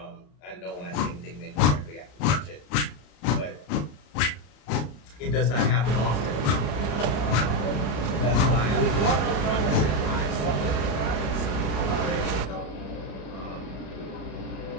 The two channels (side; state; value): right; late; 34 ms